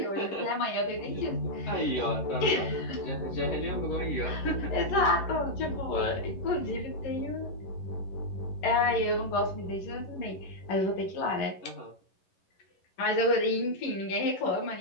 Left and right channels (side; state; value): right; late; 11 ms